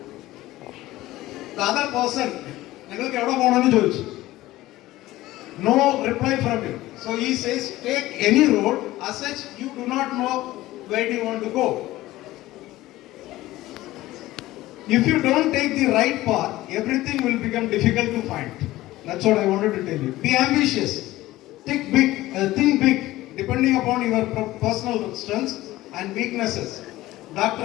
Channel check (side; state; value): right; quieter; 16.8 dB